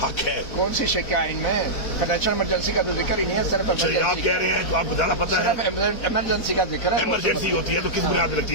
है। कौन सी शिक आइन में फाइनेंशियल इमरजेंसी का तो जिक्र ही नहीं है सिर्फ। आप कह रहे हैं तो आपको ज्यादा पता है, इमरजेंसी का जिक्र है। इमरजेंसी होती है तो किस बुनियाद पर लगती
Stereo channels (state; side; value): late; right; 4.4 ms